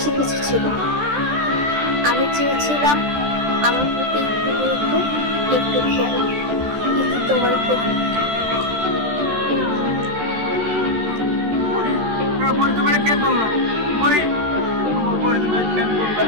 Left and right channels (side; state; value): left; late; 14 ms